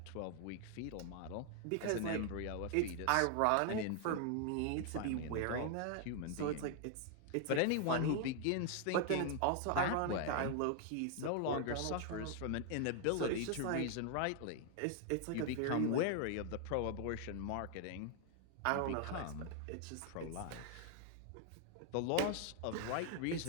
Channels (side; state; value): both; different; correlation 0.00